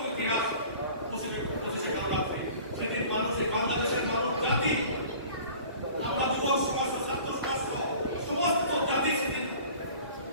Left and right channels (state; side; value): inverted; both; correlation -0.45